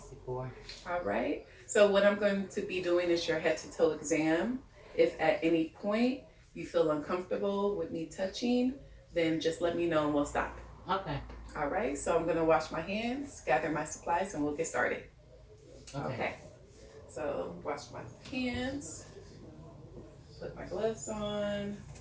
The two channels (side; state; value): both; identical; correlation 1.00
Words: All right. So what I'm going to be doing is your head to toe exam. If at any point you feel uncomfortable with me touching, then just let me know and we'll stop. Okay. All right. So I'm going to wash my hands, gather my supplies, and we'll get started. Okay. So wash my hands, put my gloves on.